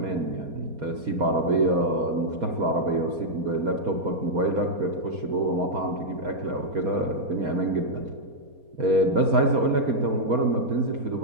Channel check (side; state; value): left; late; 4.3 ms